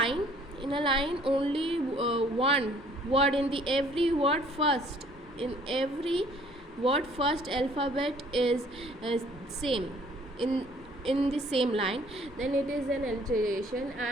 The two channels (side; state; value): both; normal; correlation 0.58